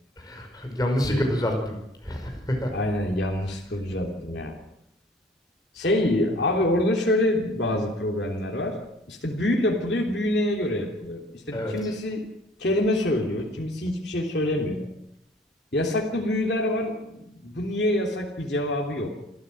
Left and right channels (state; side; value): normal; both; correlation 0.52